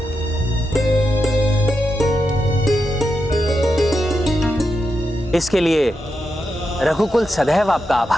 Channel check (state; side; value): normal; both; correlation 0.86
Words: इसके लिए रघुकुल सदैव आपका